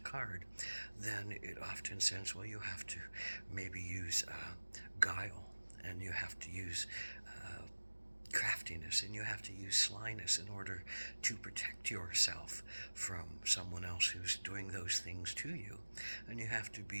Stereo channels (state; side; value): inverted; both; correlation -1.00